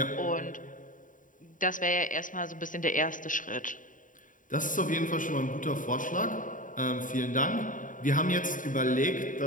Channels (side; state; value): right; late; 0.38 ms